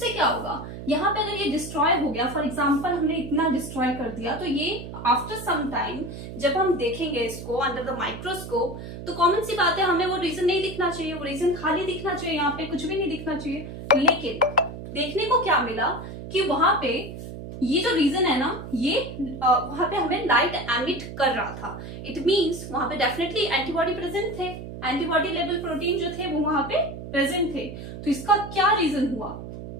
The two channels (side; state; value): right; noise; hum, 10 dB below the sound